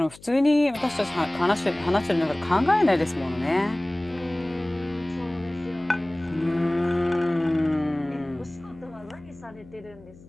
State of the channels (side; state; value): left; noise; hum, 22 dB below the sound